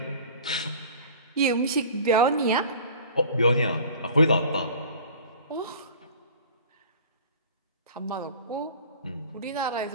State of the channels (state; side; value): inverted; both; correlation -0.43